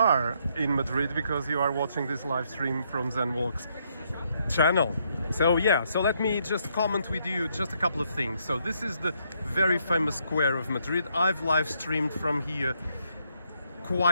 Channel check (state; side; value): inverted; both; correlation -0.73